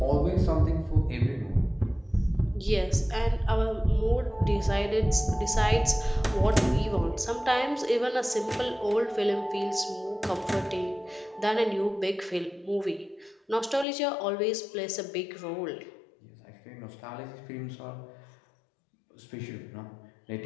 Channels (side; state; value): right; drops out; at 13.9 s